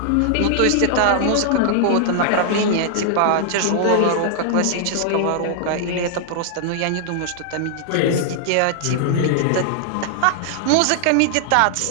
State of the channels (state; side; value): different; both; correlation -0.01